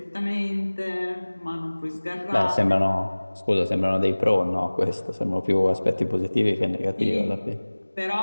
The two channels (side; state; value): both; inverted; correlation -1.00